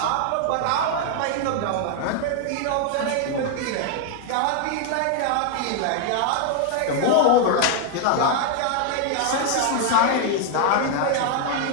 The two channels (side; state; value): both; different; correlation 0.00